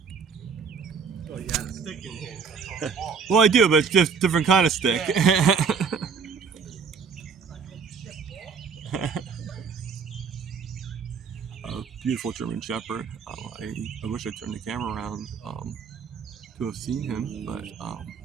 Oh, you had a stick in here. Well, I do, but it's just different kind of stick. Yeah. A beautiful German Shepherd. I wish I turned the camera around to have seen him, but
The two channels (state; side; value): quieter; left; 5.8 dB